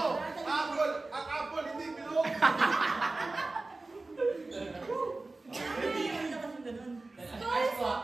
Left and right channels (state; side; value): quieter; left; 3.3 dB